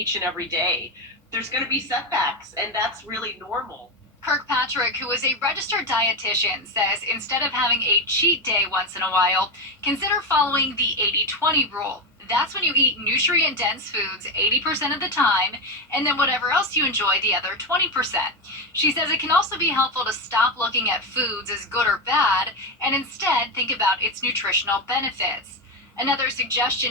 and every day. There's going to be setbacks, and that's really normal. Kirkpatrick, who is a registered dietitian, says instead of having a cheat day once in a while, consider following the 80-20 rule. That's when you eat nutrient-dense foods 80% of the time, and then whatever else you enjoy the other 20%. She says it can also be helpful to stop looking at foods as good or bad, and instead think about its nutritional benefits. Another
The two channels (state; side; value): normal; both; correlation 0.13